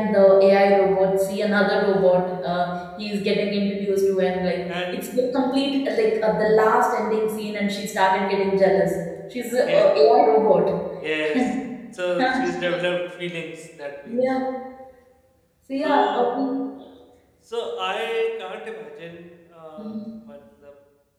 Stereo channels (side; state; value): both; identical; correlation 1.00